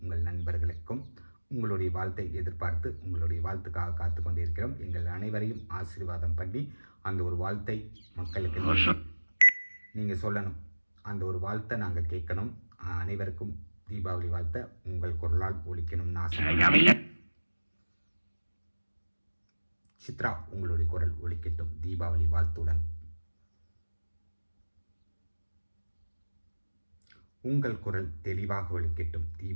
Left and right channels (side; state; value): both; inverted; correlation -1.00